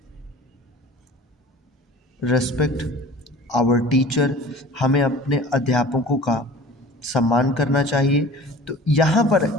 our teacher, हमें अपने अध्यापकों का सम्मान करना चाहिए। तो यहाँ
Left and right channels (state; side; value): normal; both; correlation 0.42